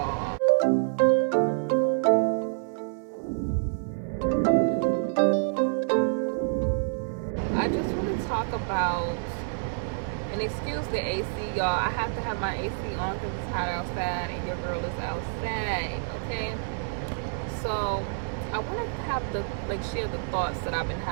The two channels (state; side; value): silent; left; 60 dB below the other